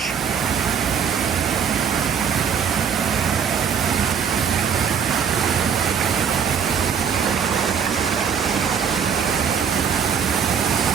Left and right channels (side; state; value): left; quieter; 7.1 dB